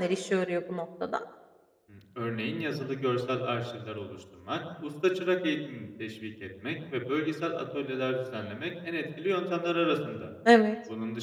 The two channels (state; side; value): identical; both; correlation 1.00